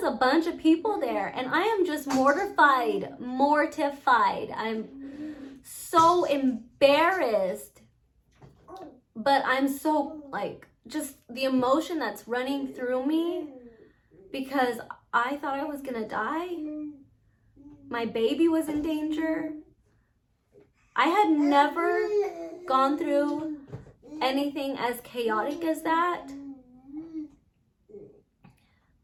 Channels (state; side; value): identical; both; correlation 1.00